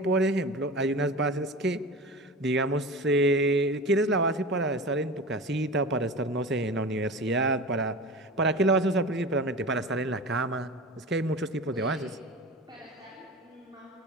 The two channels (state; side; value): normal; both; correlation 0.32